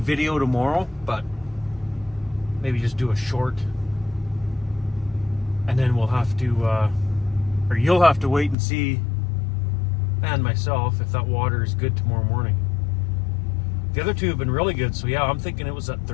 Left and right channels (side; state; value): right; drops out; at 8.6 s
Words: tomorrow, but maybe just do a short, and then we'll have to, or you'll have to wait and see, and myself, if that water is good tomorrow morning. The other two have been really good, so yeah, I'm thinking it was that